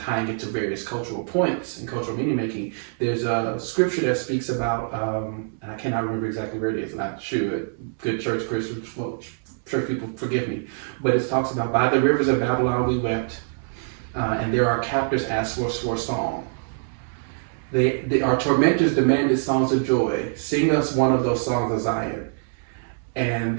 tying it to various cultural points and cultural meaning making. There's a scripture that speaks about, and I cannot remember exactly where it is, and I should. Good church people forgive me, but it talks about, by the rivers of Babylon we wept, and there our captors asked for a song. Our tormentors demanded songs of joy. Sing us one of those songs of Zion. And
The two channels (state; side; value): silent; left; 62 dB below the other